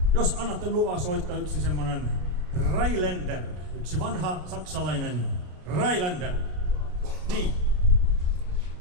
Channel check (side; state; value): left; late; 33 ms